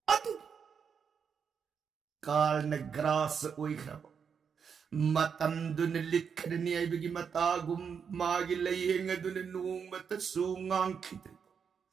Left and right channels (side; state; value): left; quieter; 6.7 dB